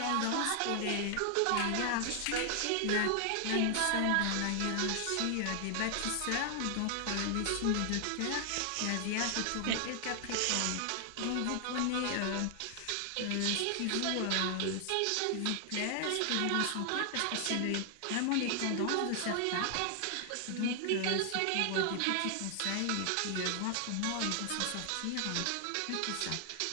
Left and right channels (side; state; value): both; different; correlation 0.00